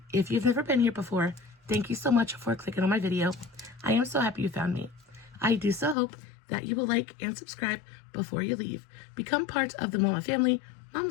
If you've never been here before, thank you so much for clicking on my video. I am so happy you found me. I do so hope that you will like and subscribe before you leave. Become part of the Mama family.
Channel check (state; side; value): drops out; right; at 6.0 s